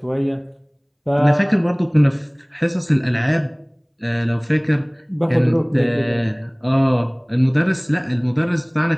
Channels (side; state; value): both; identical; correlation 1.00